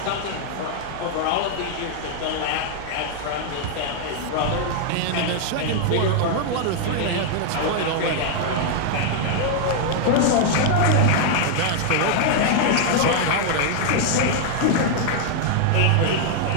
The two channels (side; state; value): both; different; correlation 0.00